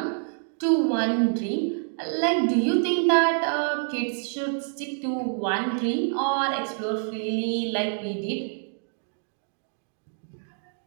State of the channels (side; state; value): left; silent; digital silence